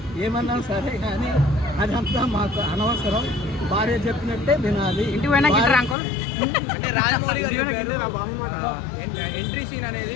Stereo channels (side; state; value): right; drops out; at 6.0 s